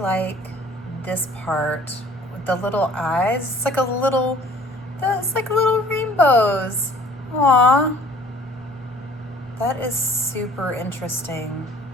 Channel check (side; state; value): both; normal; correlation 0.52